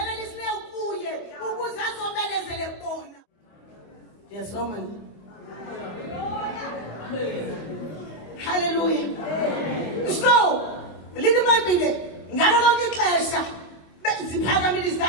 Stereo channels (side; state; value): right; late; 25 ms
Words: kuye ukuze azomelezele bona yasoma haleluya so lithi iBhayibhile ngalo lonke ixesha ziphakamile